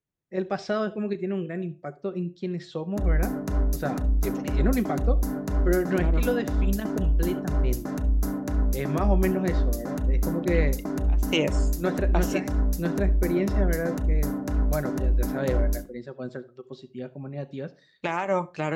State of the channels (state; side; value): identical; both; correlation 1.00